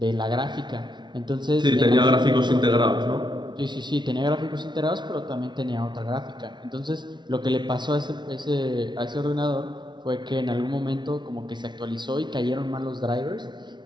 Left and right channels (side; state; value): left; late; 0.22 ms